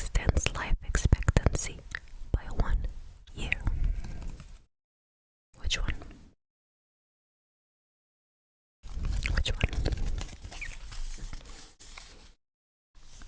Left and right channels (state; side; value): identical; both; correlation 1.00